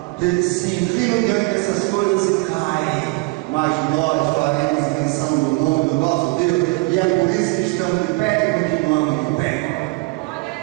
Eles se inclinam diante dessas coisas e caem. Mas nós faremos menção do nome do nosso Deus, e é por isso que estamos de pé e continuamos de pé.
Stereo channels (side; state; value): left; quieter; 26.0 dB